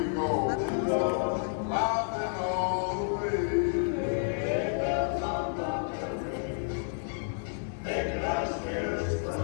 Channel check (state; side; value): silent; right; 55 dB below the other